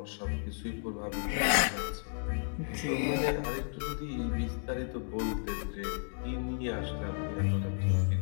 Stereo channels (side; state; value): right; silent; 56 dB below the other